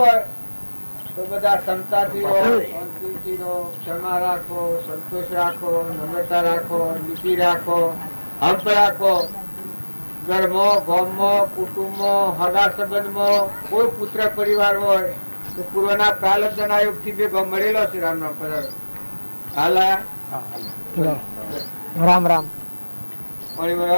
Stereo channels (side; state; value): both; inverted; correlation -1.00